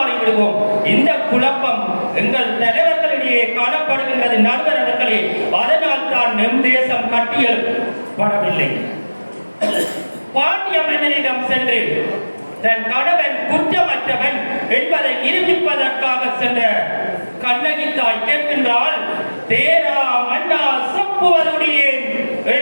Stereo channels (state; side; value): inverted; both; correlation -1.00